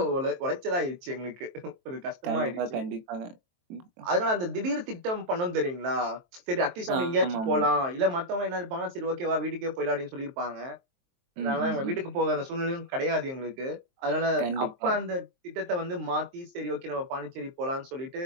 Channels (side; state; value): left; late; 23 ms